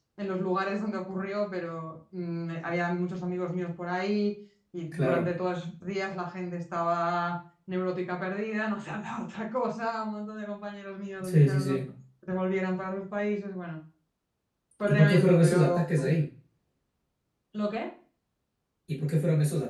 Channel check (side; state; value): both; identical; correlation 1.00